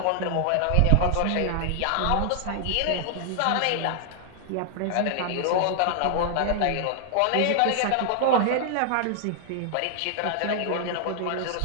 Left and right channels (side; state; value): both; different; correlation 0.00